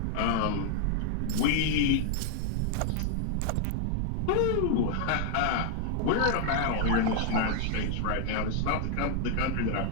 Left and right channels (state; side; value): different; both; correlation 0.00